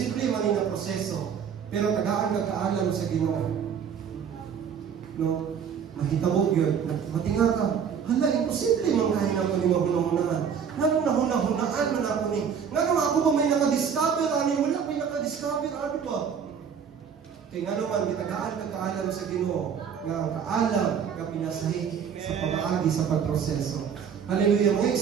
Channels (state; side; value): quieter; left; 7.3 dB